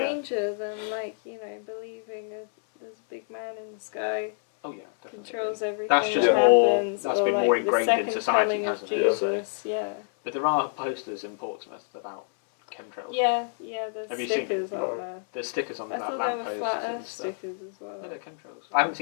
than, like, you know, believing there's a big man in the sky, Oh yeah, definitely. controls everything That's just that more- happens, that's or been like more the ingrained in second society, coming of hasn't it? So- Jesus, yeah. But there are posters in Portsmouth about chemtrails. Yeah, there's Have you seen stickers them? on No. there. There's stickers on I that thought there were lampposts flat and earth stuff. stickers as well. No, they're chemtrails. I haven't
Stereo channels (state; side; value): silent; right; 60 dB below the other